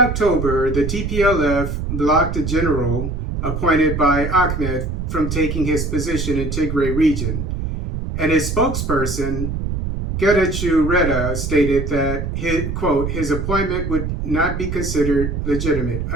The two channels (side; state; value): right; noise; rumble, 3 dB below the sound